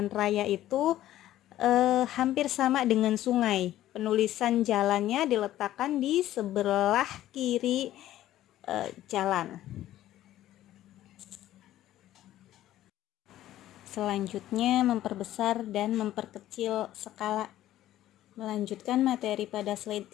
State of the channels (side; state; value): right; quieter; 13.6 dB